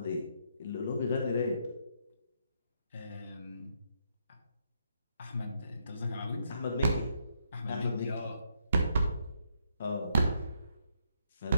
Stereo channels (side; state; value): both; inverted; correlation -0.75